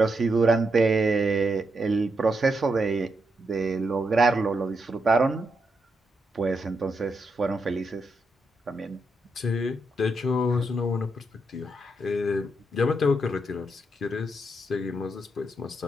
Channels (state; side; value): normal; both; correlation 0.82